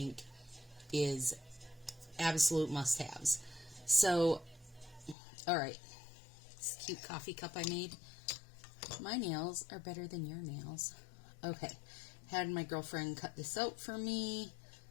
is absolute must-haves. So, alright, this cute coffee cup I made. My nails are better than your nails. Okay, had my girlfriend cut this out for me,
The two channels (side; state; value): right; drops out; at 5.2 s